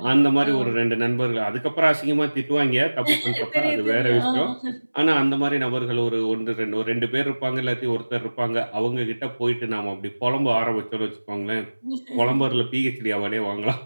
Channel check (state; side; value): inverted; both; correlation -1.00